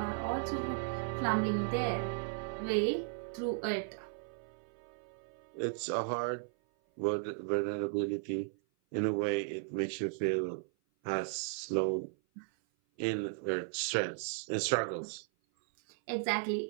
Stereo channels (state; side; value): silent; left; 54 dB below the other